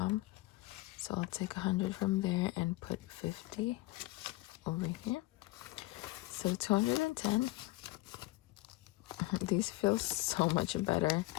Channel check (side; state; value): right; quieter; 19.8 dB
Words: So I'll take 100 from there and put 50 over here. So 210. These feel so much better